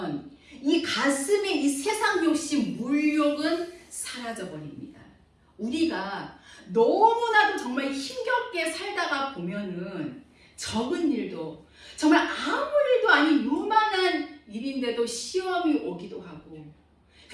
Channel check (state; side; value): identical; both; correlation 1.00